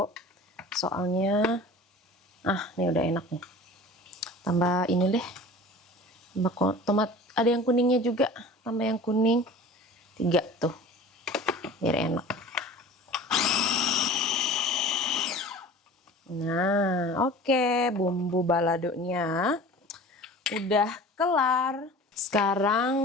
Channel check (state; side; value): normal; both; correlation 0.40